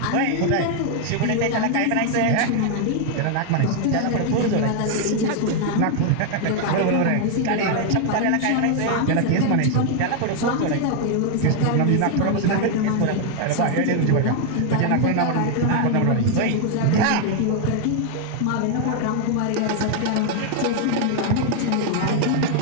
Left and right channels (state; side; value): different; both; correlation 0.00